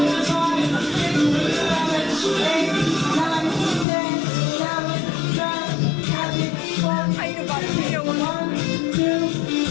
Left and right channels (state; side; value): drops out; right; at 3.9 s